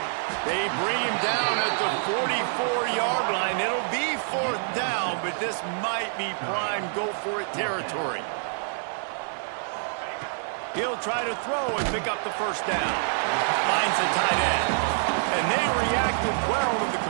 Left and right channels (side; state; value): left; silent; digital silence